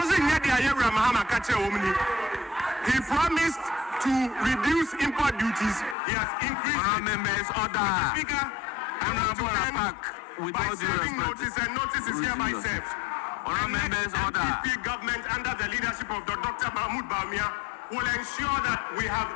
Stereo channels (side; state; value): right; drops out; at 6.0 s